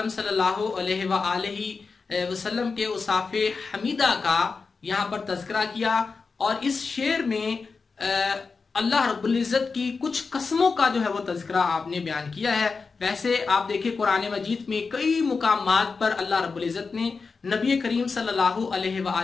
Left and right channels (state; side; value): quieter; right; 4.7 dB